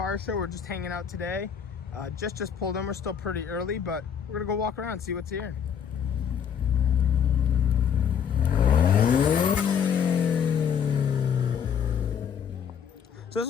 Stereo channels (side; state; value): right; quieter; 7.7 dB